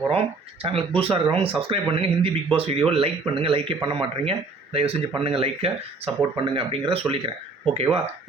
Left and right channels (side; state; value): left; quieter; 3.8 dB